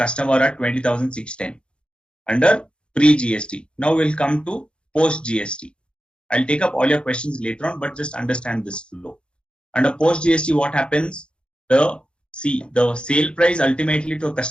at 20,610 under pre-GST. Now we'll come to post-GST. I'll take up all your questions later on, but just understand this flow. Under post-GST, what happens? The sale price ultimately to a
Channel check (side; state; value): right; late; 0.055 ms